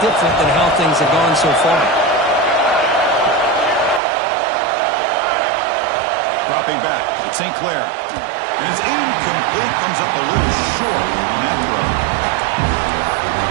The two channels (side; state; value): left; drops out; at 4.0 s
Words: different than how things have gone so far. Dropping back, it's St. Clair. And it's incomplete, comes up a little short on that throw.